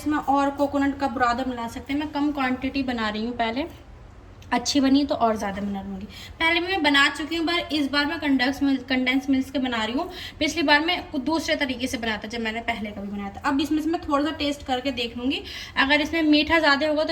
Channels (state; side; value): identical; both; correlation 1.00